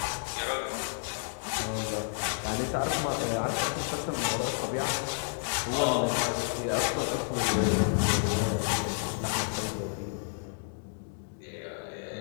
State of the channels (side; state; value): right; silent; digital silence